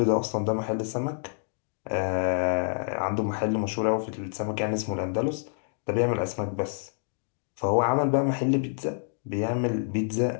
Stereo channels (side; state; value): right; silent; digital silence